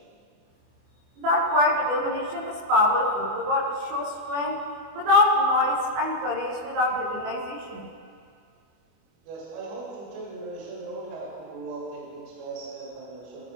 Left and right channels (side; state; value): left; late; 25 ms